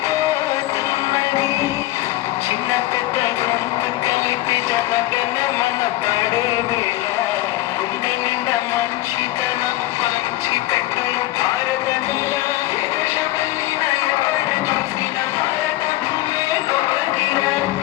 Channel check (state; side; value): quieter; right; 16.7 dB